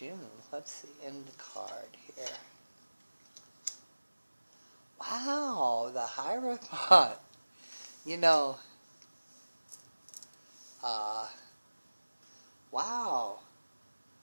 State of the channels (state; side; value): inverted; both; correlation -1.00